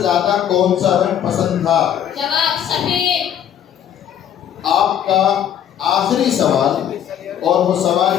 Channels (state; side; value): quieter; right; 9.8 dB